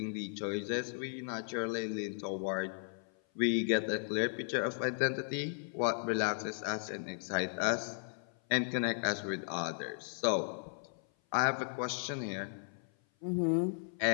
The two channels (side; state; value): right; silent; 54 dB below the other